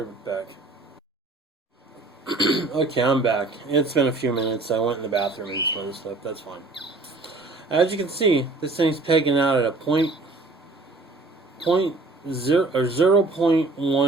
right back. Okay, I'm back. It's been a few minutes. I went in the bathroom and some other stuff. That's fine. As you can see, this thing's pegging out at a 0.1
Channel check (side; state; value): left; quieter; 3.4 dB